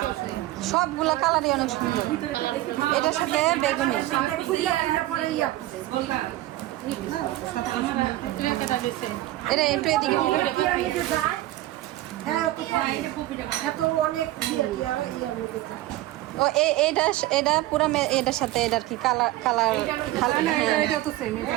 সবগুলা কালারই অনেক সুন্দর। এটার সাথে বেগুনি। এটা একটু এদিকে অনেক ও এটা পুরা এটার সাথে এটার কি কালার কালার এটা তো সেম এটা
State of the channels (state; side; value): quieter; left; 16.2 dB